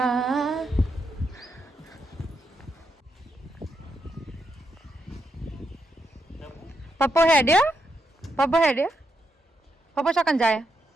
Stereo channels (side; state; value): both; normal; correlation 0.81